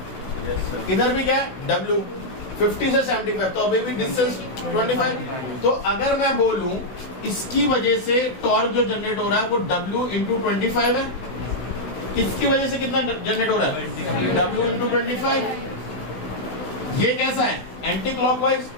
Yes, sir. इधर भी क्या है W 50 से 75, तो अभी भी डिस्टेंस 25। तो अगर मैं बोलूं इसकी वजह से टॉर्क जो जनरेट हो रहा है वो W into 25 है, इसकी वजह से कितना जनरेट हो रहा है, W into 25। ये कैसा है, एंटी क्लॉकवाइज,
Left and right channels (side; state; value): right; late; 16 ms